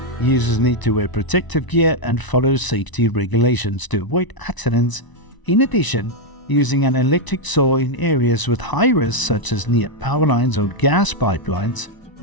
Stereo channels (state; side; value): late; right; 1.0 ms